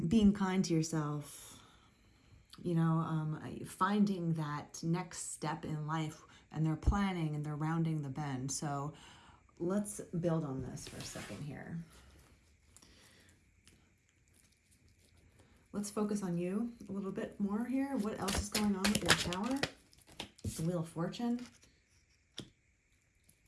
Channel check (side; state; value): both; identical; correlation 1.00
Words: Being kind to yourself, finding that next step in life, and they're planning and they're rounding the bend. So let's build on this for a second here. Let's focus on you a little bit more here. What else is going on with your Tower? The Wheel of Fortune.